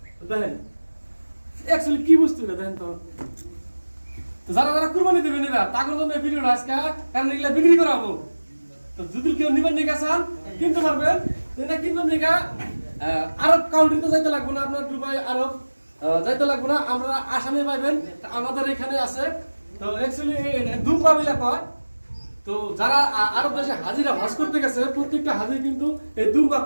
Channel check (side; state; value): both; inverted; correlation -1.00